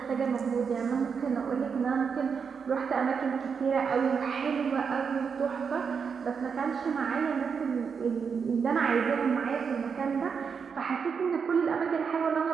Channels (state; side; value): quieter; left; 6.2 dB